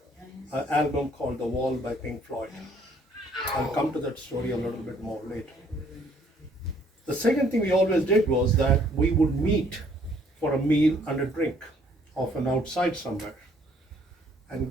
album called The Wall by Pink Floyd. I'll come to that story a little bit more later. The second thing we always did was that we would meet for a meal and a drink, often outside somewhere.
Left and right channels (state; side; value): normal; both; correlation 0.63